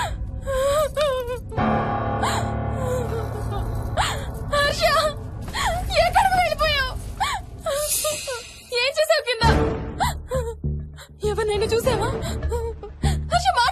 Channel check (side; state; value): both; identical; correlation 1.00